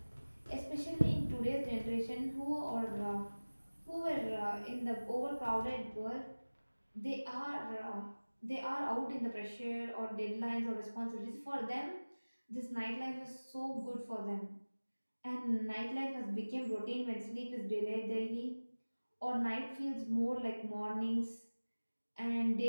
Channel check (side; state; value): both; inverted; correlation -1.00